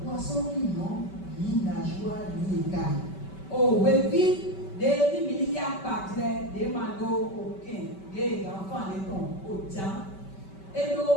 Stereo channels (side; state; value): right; late; 5.2 ms